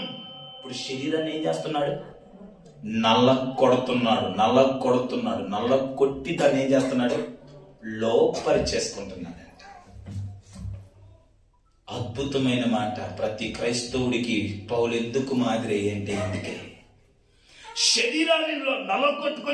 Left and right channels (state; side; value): identical; both; correlation 1.00